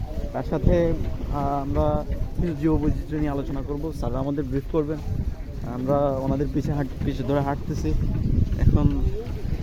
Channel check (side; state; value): both; identical; correlation 1.00